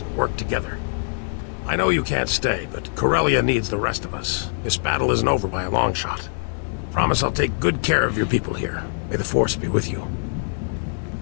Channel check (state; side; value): silent; right; 63 dB below the other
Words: and work together. I know you can't stay, but Corellia needs the rest of us. This battle isn't over by a long shot. Promise I'll take good care of your people here. May the Force be with you.